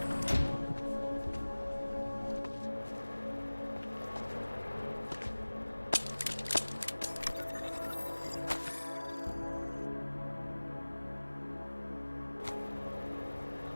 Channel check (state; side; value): inverted; both; correlation -1.00